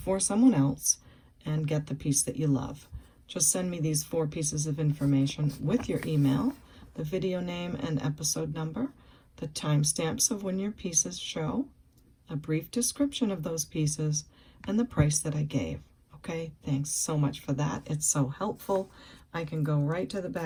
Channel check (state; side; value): identical; both; correlation 1.00